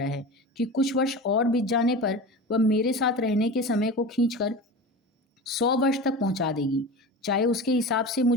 है कि कुछ वर्ष और बीत जाने पर वह मेरे साथ रहने के समय को खींचकर 100 वर्ष तक पहुंचा देगी, चाहे उसके हिसाब से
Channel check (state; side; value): normal; both; correlation 0.30